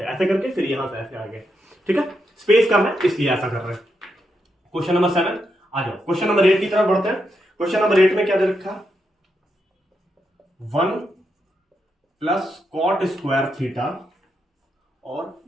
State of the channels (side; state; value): both; normal; correlation 0.83